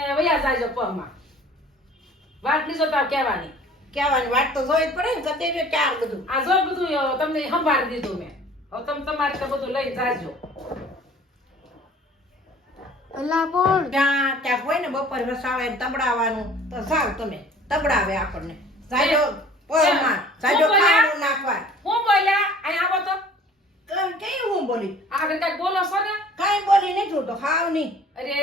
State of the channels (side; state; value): both; normal; correlation 0.49